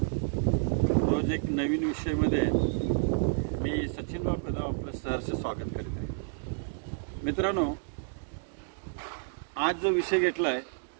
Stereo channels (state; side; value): silent; left; digital silence